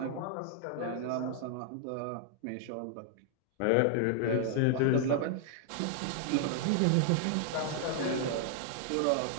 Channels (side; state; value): both; different; correlation 0.00